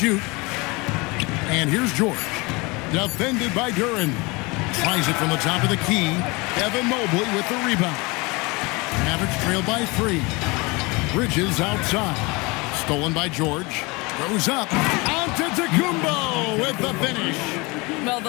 And here's George. Defended by Duran. Tries it from the top of the key. Evan Mobley with the rebound. Mavericks trail by 3. Bridges outside. Stolen by George. Goes up. Antetokounmpo with the finish. Well,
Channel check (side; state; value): right; quieter; 25.8 dB